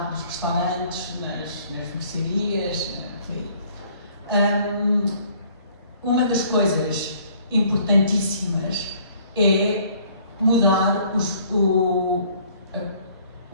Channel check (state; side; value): inverted; both; correlation -0.58